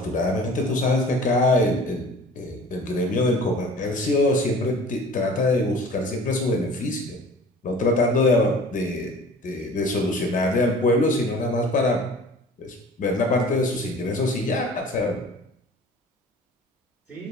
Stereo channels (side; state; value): both; normal; correlation 0.45